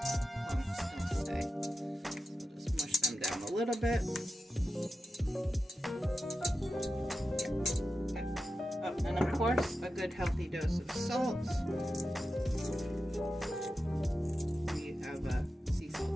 lumps don't stay. So just mush them down a little bit. Okay. Oh, and of course, a good healthy dose of salt. We have a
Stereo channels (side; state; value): both; normal; correlation 0.91